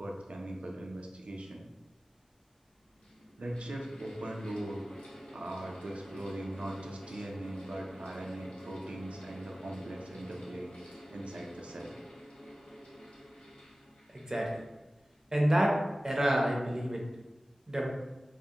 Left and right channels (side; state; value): both; normal; correlation 0.97